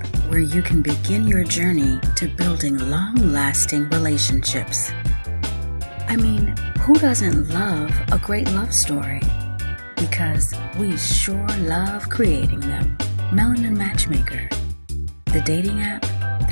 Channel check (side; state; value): both; inverted; correlation -1.00